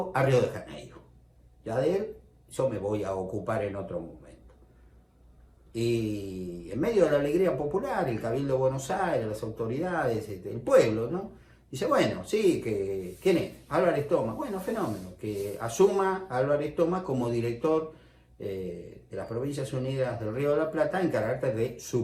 a Río de Janeiro. Ya de él, yo me voy a ocupar en otro momento. Y en medio de la alegría popular, el Cabildo de Buenos Aires, las autoridades, el pueblo, ¿no? Dice, bueno, sí, ¿quién es? Álvarez Thomas. Bueno, fenómeno, que asuma a Álvarez Thomas como director de las Provincias Unidas del Río de la Plata en carácter de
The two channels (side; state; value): both; identical; correlation 1.00